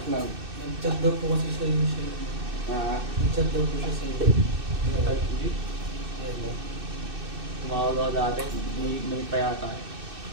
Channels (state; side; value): late; left; 2.6 ms